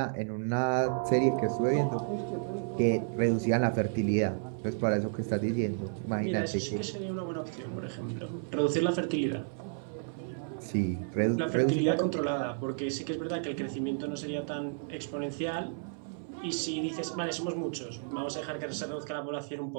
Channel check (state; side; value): silent; left; 57 dB below the other